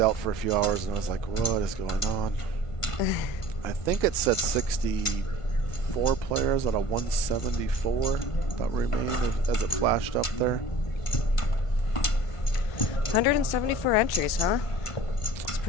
for a few hours and I was like, what is going on? I think it said 64 players out of 174 that remained as it flashed up there. 174 entries, huh? It's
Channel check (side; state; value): right; late; 1.5 ms